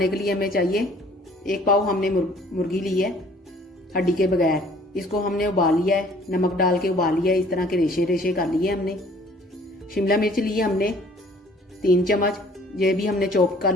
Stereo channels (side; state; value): both; normal; correlation 0.55